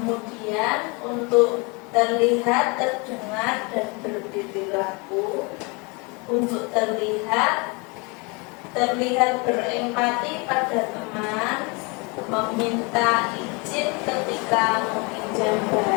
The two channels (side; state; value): right; quieter; 29.6 dB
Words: untuk terlihat, terdengar, dan berperilaku. Untuk terlihat berempati pada teman, meminta izin ketika meminjam